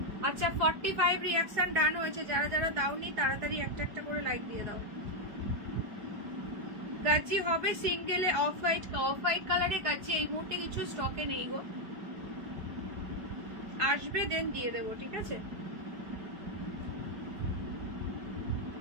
अच्छा 45 रिएक्शन ডান হয়েছে, যারা যারা দাওনি তাড়াতাড়ি একটা একটা করে লাইক দিয়ে দাও। গাজি হবে সিঙ্গেলে অফ হোয়াইট কালারে গাজি এই মুহূর্তে কিছু স্টকে নেই গো, আসবে দেন দিয়ে দেবো, ঠিক আছে,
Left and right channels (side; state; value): left; late; 4.8 ms